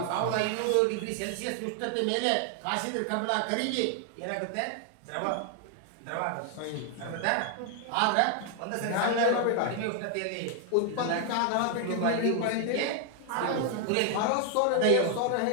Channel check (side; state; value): both; different; correlation 0.00